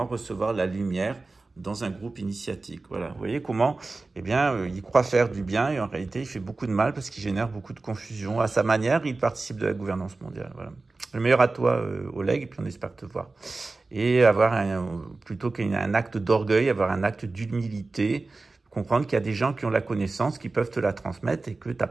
recevoir la lumière dans un groupe initiatique. Voilà, vous voyez comment, il croit faire du bien et en réalité, il fait beaucoup de mal parce qu'il génère beaucoup de confusion. À sa manière, il participe de la gouvernance mondiale. Voilà. Le meilleur à toi, Oleg, et puis on espère te voir. Et plutôt qu'un acte d'orgueil, avoir un acte d'humilité, comprendre qu'il y a des gens qui ont la connaissance, qui peuvent te la transmettre et que t'as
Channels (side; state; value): left; quieter; 3.5 dB